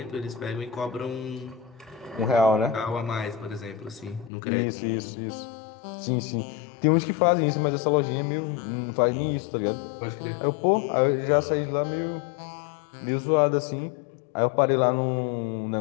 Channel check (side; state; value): right; drops out; at 4.3 s